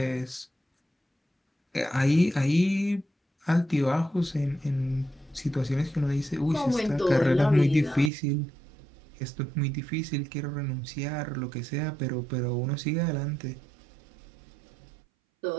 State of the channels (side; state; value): left; drops out; at 8.1 s